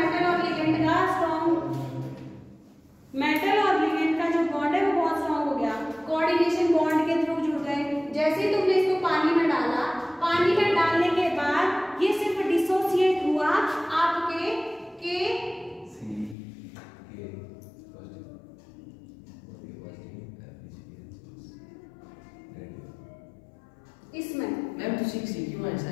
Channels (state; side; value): drops out; right; at 16.4 s